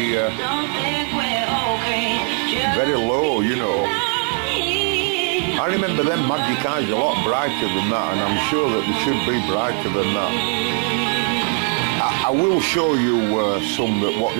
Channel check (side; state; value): left; quieter; 37.2 dB